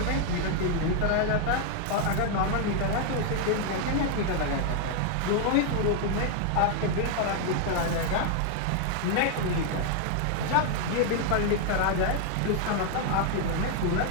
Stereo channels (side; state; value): both; different; correlation 0.00